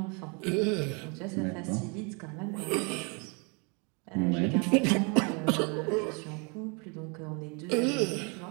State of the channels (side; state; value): left; quieter; 33.1 dB